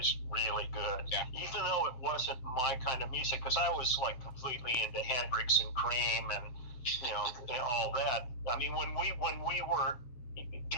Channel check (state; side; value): late; right; 8.0 ms